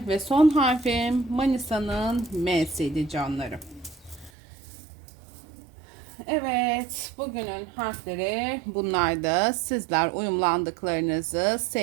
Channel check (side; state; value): left; drops out; at 4.3 s